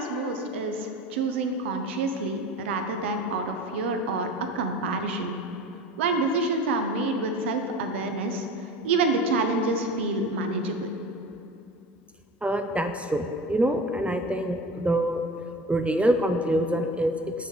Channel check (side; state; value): both; normal; correlation 0.35